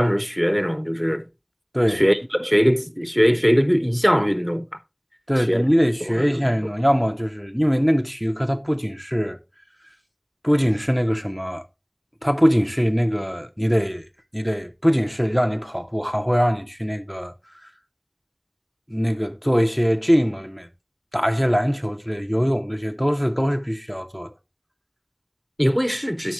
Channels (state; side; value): identical; both; correlation 1.00